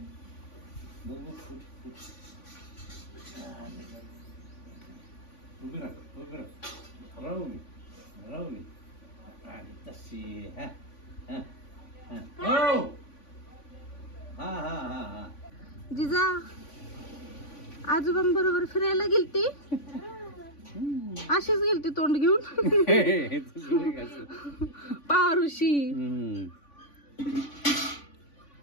जिजा आजोबांबरोबर फिरायला गेलती. अशीच गेलती तोंड घेऊन. पारुशी.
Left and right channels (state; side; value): late; right; 3.5 ms